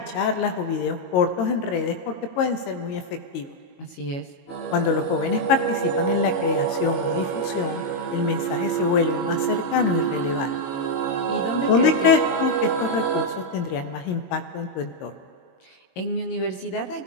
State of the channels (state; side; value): late; right; 22 ms